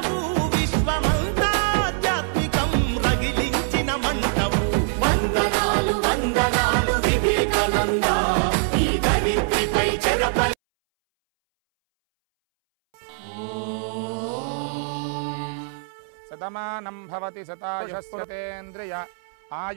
విశ్వమంతా ఆధ్యాత్మికం రగిలించిన మంటవు వందనాలు వందనాలు వివేకానంద ఈ ధరిత్రిపై చెరపై శతమానం భవతి శతాయుష్యేంద్రియ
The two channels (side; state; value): left; silent; 63 dB below the other